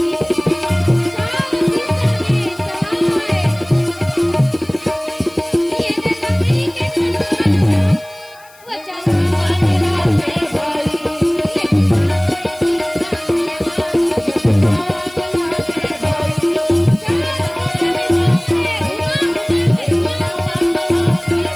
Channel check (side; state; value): left; noise; hiss, 26 dB below the sound